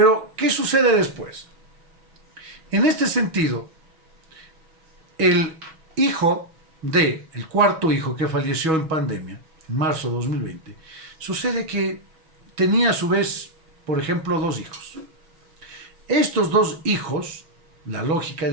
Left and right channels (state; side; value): late; left; 6.2 ms